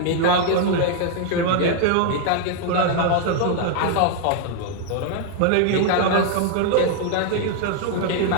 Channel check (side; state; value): both; different; correlation 0.00